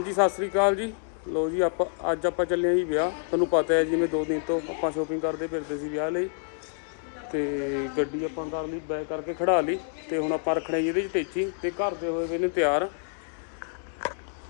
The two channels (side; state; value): right; silent; 60 dB below the other